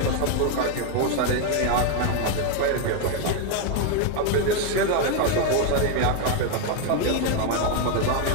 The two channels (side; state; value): both; different; correlation 0.01